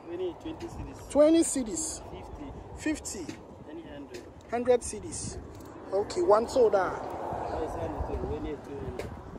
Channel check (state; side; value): identical; both; correlation 1.00